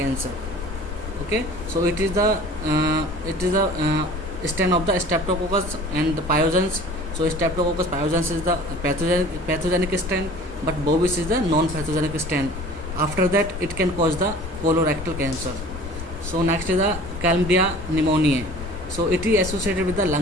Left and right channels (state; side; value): normal; both; correlation 0.45